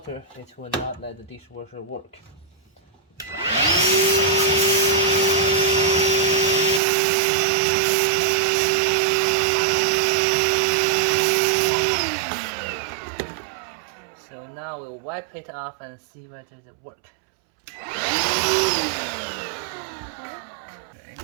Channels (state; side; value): drops out; left; at 6.8 s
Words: it will not let the dishwasher work. So now we'll wipe it off and see whether it works. Okay,